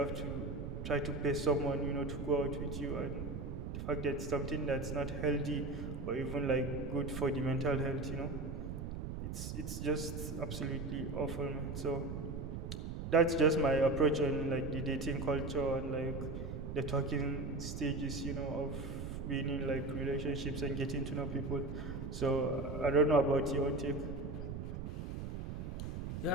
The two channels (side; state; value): right; noise; rumble, 5 dB below the sound